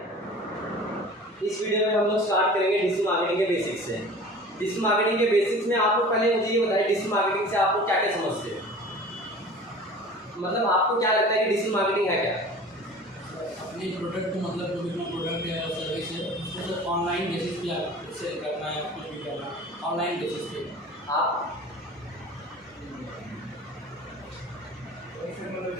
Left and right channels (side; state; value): both; normal; correlation 0.41